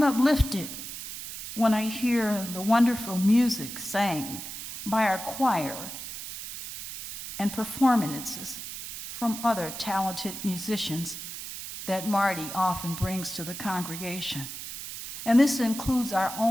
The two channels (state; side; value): noise; right; hiss, 9 dB below the sound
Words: uplifted when I hear the wonderful music sang by our choir and performances from other talented musicians that Marty often brings to the congregation. And this includes our